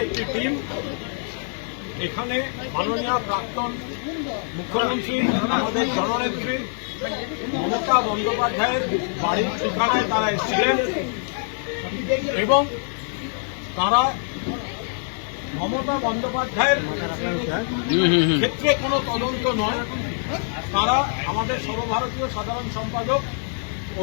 একটি টিম এখানে মাননীয় প্রাক্তন মুখ্যমন্ত্রী আমাদের জননেত্রী মমতা বন্দ্যোপাধ্যায়ের বাড়ির ঠিকানায় তারা এসেছিলেন এবং তারা মমতা বন্দ্যোপাধ্যায়ের ক্ষেত্রে কোনো তদন্ত নয়, তারা আমাদের সর্বভারতীয় সাধারণ সম্পাদক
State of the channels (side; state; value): right; silent; 62 dB below the other